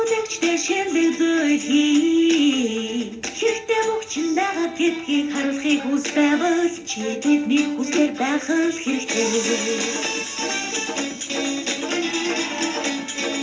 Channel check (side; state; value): both; identical; correlation 1.00